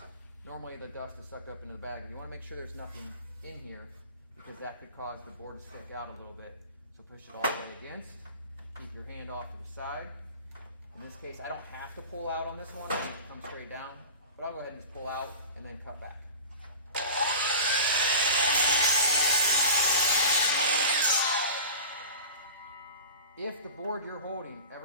normally the dust is sucked up into the bag. You want to make sure there's nothing in here because that could cause the board to stick out a little bit. So push it all the way against. Keep your hand off to the side. In this case, I don't have to pull out on this one. I can come straight down. But I'll go ahead and just pull out and then cut back. If the board you're holding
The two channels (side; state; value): both; inverted; correlation -0.36